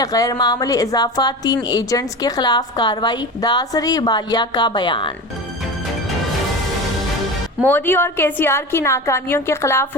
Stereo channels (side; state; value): both; normal; correlation 0.28